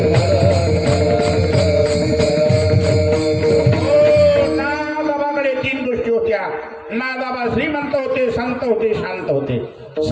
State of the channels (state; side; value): identical; both; correlation 1.00